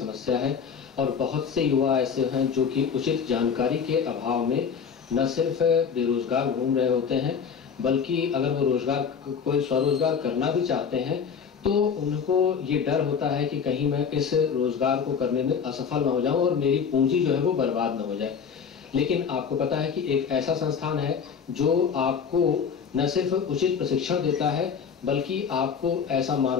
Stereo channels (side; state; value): right; quieter; 6.6 dB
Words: है और बहुत से युवा ऐसे हैं जो कि उचित जानकारी के अभाव में न सिर्फ बेरोजगार घूम रहे होते हैं, बल्कि अगर वो कोई स्वरोजगार करना भी चाहते हैं तो उनको ये डर होता है कि कहीं मैं इस रोजगार को करने में असफल न हो जाऊं और मेरी पूंजी जो है वो बर्बाद न हो जाए। लेकिन आपको पता है कि एक ऐसा संस्थान है जो आपको न सिर्फ उचित प्रशिक्षण देता है बल्कि आपको ऐसा